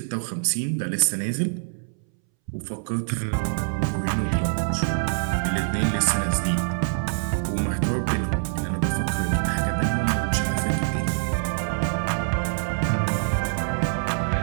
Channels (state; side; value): silent; left; 62 dB below the other